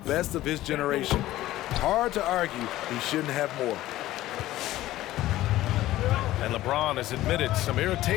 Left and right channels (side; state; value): right; quieter; 15.4 dB